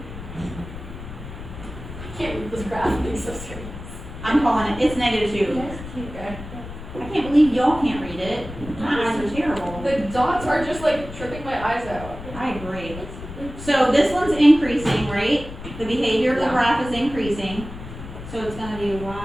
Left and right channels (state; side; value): noise; left; rumble, 12 dB below the sound